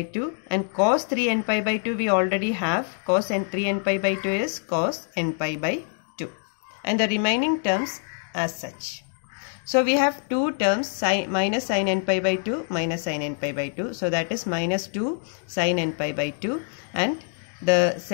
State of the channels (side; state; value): right; silent; 57 dB below the other